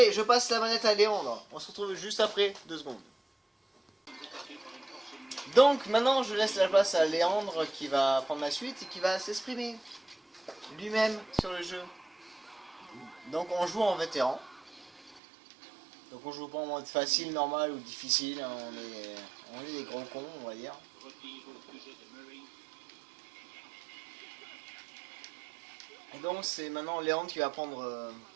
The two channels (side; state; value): left; drops out; at 15.2 s